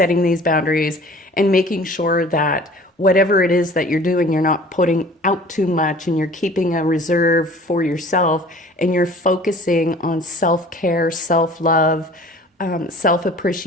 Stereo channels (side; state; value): both; normal; correlation 0.47